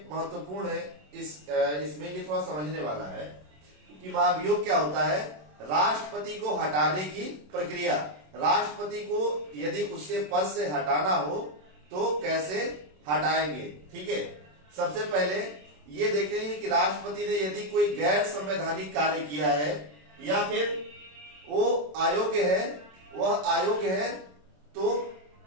महत्वपूर्ण है, इसमें ये थोड़ा समझने वाला है कि महाभियोग क्या होता है। राष्ट्रपति को हटाने की प्रक्रिया, राष्ट्रपति को यदि उसके पद से हटाना हो तो कैसे हटाएंगे। ठीक है, सबसे पहले ये देखेंगे कि राष्ट्रपति ने यदि कोई गैर संवैधानिक कार्य किया है या फिर वो अयोग्य है, वह अयोग्य है तो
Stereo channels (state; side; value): late; left; 27 ms